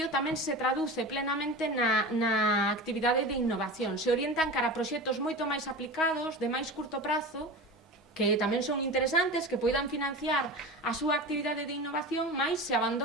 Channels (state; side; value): normal; both; correlation 0.30